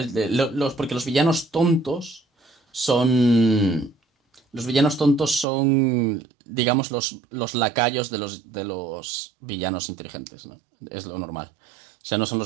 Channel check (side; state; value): left; drops out; at 5.5 s